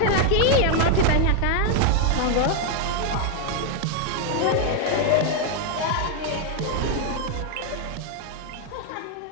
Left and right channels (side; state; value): both; different; correlation 0.01